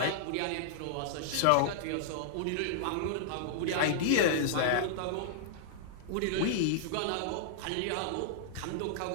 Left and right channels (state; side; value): different; both; correlation -0.01